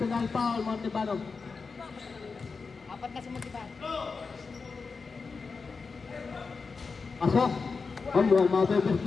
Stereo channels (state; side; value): quieter; right; 4.7 dB